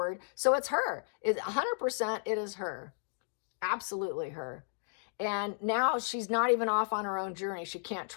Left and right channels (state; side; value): silent; right; digital silence